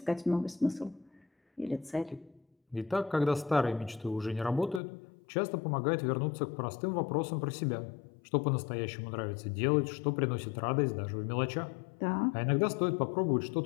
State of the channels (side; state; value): right; drops out; at 4.8 s